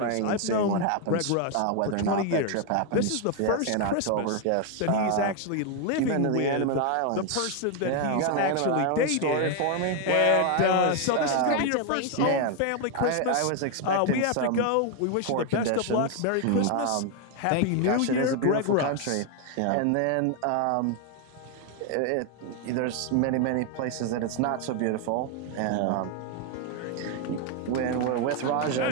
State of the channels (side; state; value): both; different; correlation 0.01